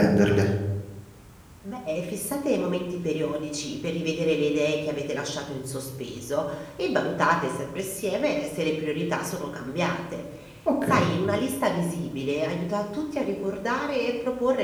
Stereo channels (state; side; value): identical; both; correlation 1.00